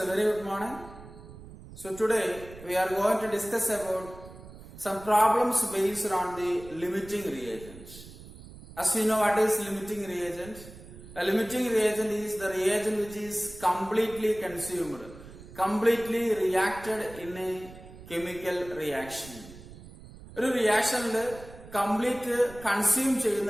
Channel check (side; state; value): right; noise; rumble, 17 dB below the sound